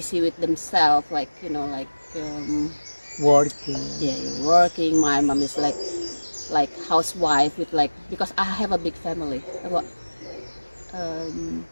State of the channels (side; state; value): both; inverted; correlation -1.00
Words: with themselves, like like Working. yeah, you're working. My mom is like housewife with like, because I have a big family, about um